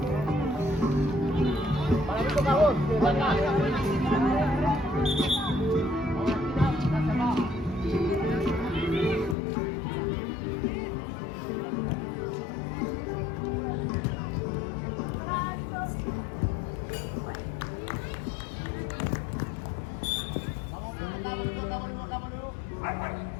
Para mí toca vos, de acá. Volvemos acá.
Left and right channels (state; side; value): drops out; right; at 9.3 s